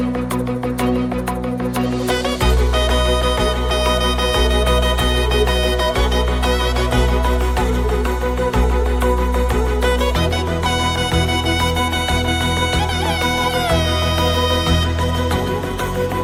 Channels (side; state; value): both; identical; correlation 1.00